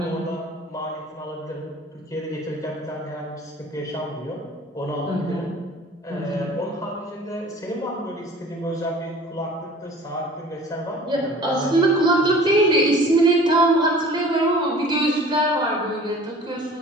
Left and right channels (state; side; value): normal; both; correlation 0.46